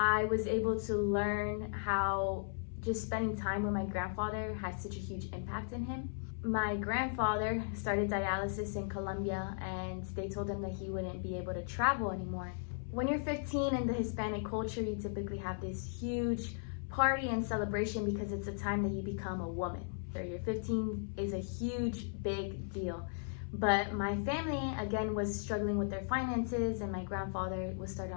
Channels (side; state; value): right; silent; 53 dB below the other